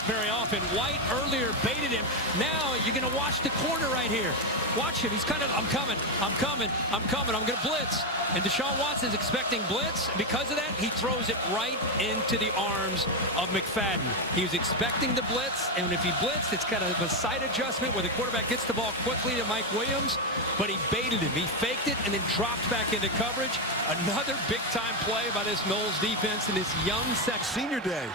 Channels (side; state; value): both; normal; correlation 0.07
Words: very often. White earlier baited him. Now you're going to watch the corner right here. Watch him. He's kind of, I'm coming, I'm going to blitz. And Deshaun Watson's expecting blitz. Because of that, he throws it right into the arms of McFadden. He was expecting the blitz, and if he blitzed, it's kind of a side adjustment where the quarterback gets the ball quickly to Mike Williams, but he baited him. He faked it and then dropped back into coverage. Another big-time play by this Noles defense in this young Senior day.